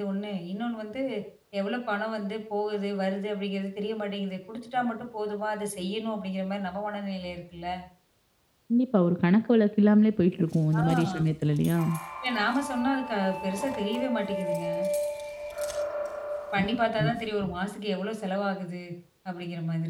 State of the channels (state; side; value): identical; both; correlation 1.00